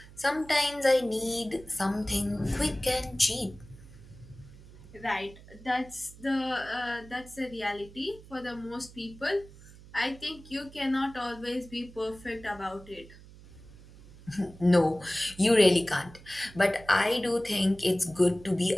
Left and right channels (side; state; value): right; noise; hum, 20 dB below the sound